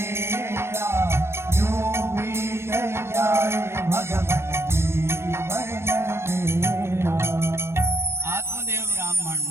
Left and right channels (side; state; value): left; late; 0.12 ms